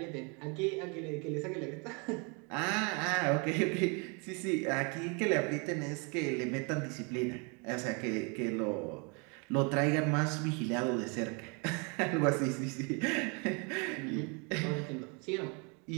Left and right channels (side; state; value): left; quieter; 33.2 dB